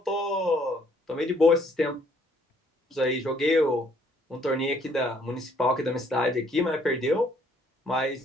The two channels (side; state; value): both; normal; correlation 0.65